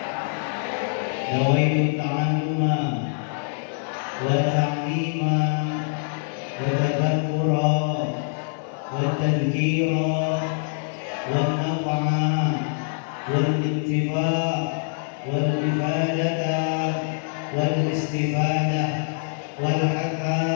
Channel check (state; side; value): silent; right; 62 dB below the other